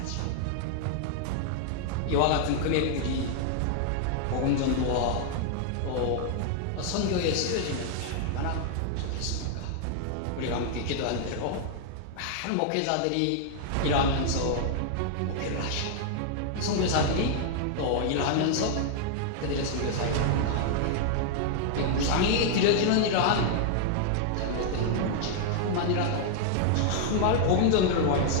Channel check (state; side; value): different; both; correlation 0.00